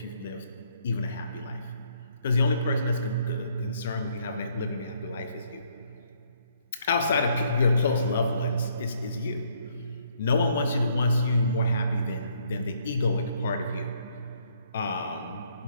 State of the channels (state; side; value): inverted; both; correlation -0.68